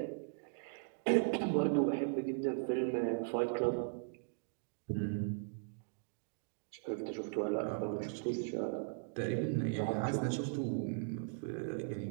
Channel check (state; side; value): silent; left; digital silence